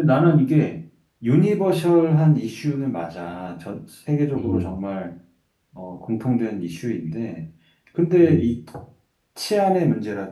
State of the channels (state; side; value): identical; both; correlation 1.00